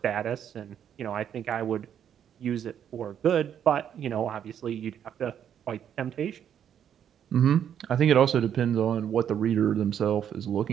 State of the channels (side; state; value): left; quieter; 9.2 dB